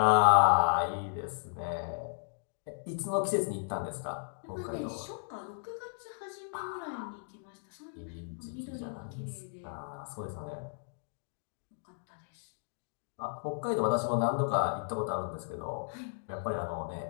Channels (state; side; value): silent; right; digital silence